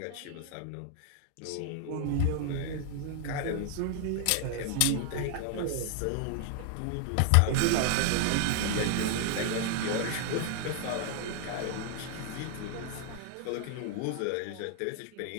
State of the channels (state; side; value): different; both; correlation 0.00